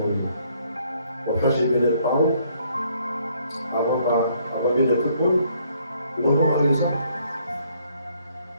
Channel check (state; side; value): inverted; both; correlation -0.66